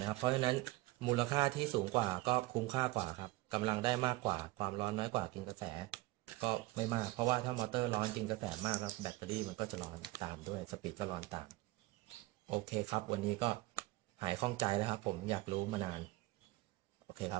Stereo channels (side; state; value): left; quieter; 19.4 dB